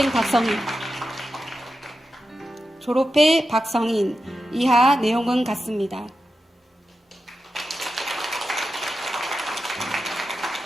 박성인. 졸업회 박성인. 이하 내용은 같습니다.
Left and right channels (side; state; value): both; normal; correlation 0.91